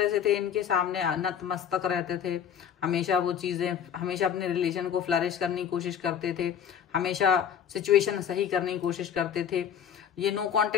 से थे इनके सामने नतमस्तक रहते थे, हमेशा वो चीजें, हमेशा अपने रिलेशन को फ्लरिश करने की कोशिश करते थे, हमेशा सिचुएशन सही करने की कोशिश करते थे। ये नो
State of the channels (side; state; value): right; quieter; 8.5 dB